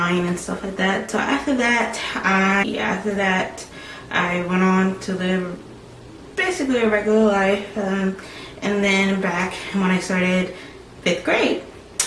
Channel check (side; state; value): both; identical; correlation 1.00